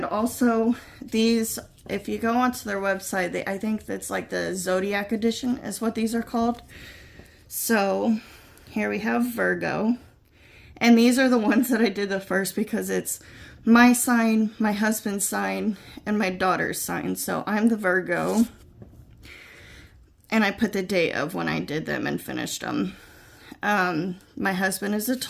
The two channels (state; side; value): identical; both; correlation 1.00